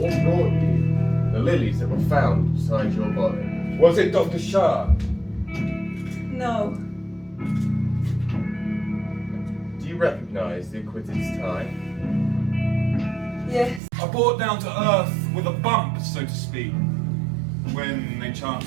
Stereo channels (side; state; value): left; drops out; at 13.8 s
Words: brought you the lilies that were found beside your body? Was it Dr. Schaad? No. Do you recognize the acquitted's tie? Yes. I brought down to earth with a bump, so to speak, when they